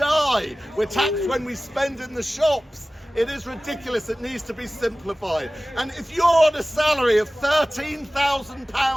We're taxed when we spend in the shops. It is ridiculous. It needs to be simplified. And if you're on a salary of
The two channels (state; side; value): normal; both; correlation 0.97